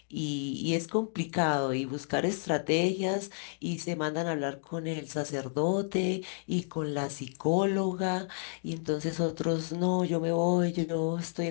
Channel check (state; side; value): silent; right; digital silence